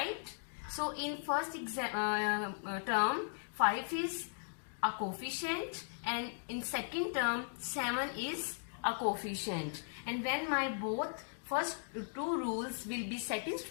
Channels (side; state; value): right; silent; digital silence